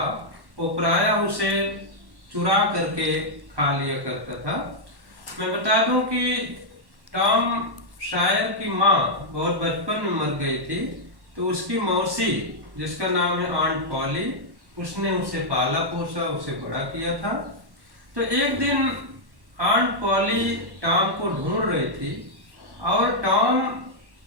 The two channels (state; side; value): late; left; 1.1 ms